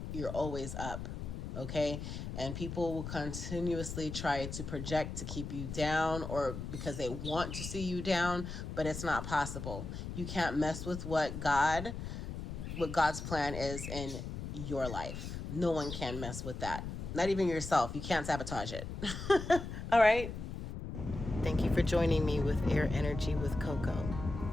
You're always up, okay? And people will continuously try to project to keep you down, or because they want to see you down, but it's not possible. You can't mess with what God's plan is in your life. No one can mess with that. Not even yourself. You can't sabotage it. All right. Thank you for joining me with Air Energy with Coco.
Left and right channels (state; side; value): noise; left; rumble, 7 dB below the sound